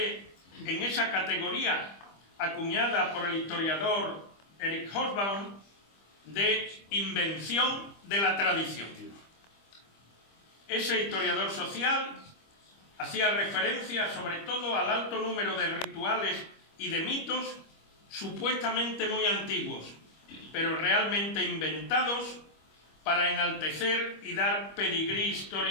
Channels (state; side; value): late; right; 25 ms